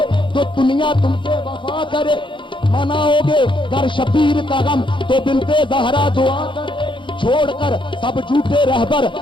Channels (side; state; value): right; late; 0.24 ms